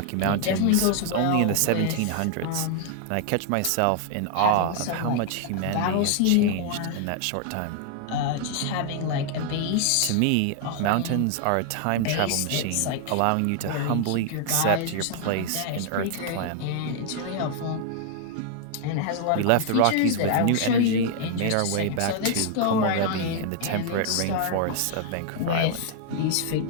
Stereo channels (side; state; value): both; different; correlation 0.00